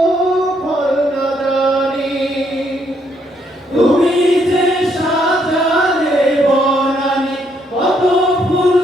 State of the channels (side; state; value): both; normal; correlation 0.72